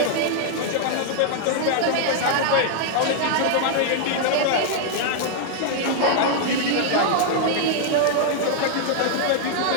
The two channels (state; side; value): different; both; correlation 0.00